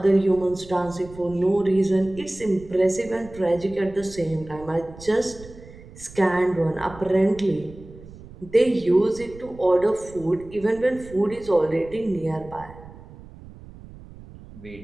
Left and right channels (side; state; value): right; noise; rumble, 18 dB below the sound